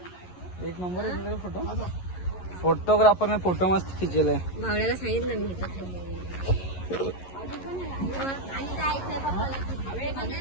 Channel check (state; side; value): late; right; 11 ms